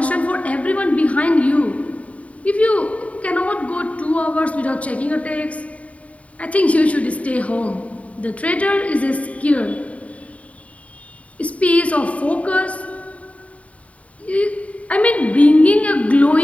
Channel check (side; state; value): right; late; 0.067 ms